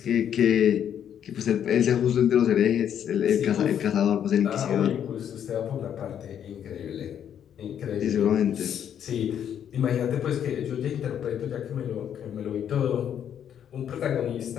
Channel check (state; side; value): quieter; right; 9.3 dB